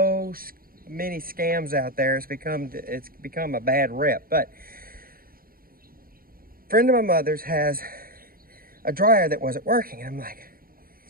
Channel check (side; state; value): left; late; 0.42 ms